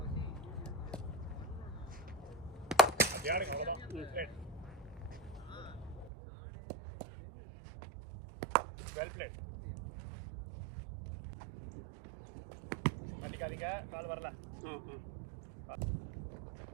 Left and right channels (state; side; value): drops out; left; at 6.1 s